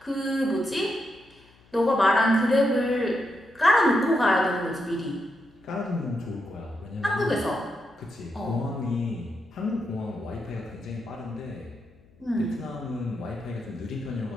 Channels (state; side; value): noise; left; hum, 29 dB below the sound